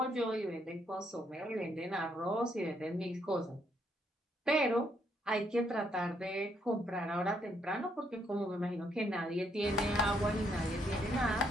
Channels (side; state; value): both; normal; correlation 0.73